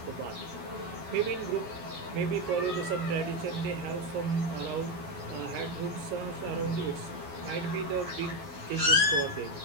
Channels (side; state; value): left; late; 12 ms